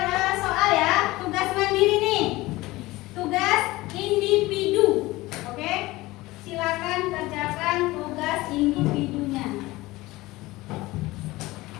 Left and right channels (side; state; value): right; quieter; 19.6 dB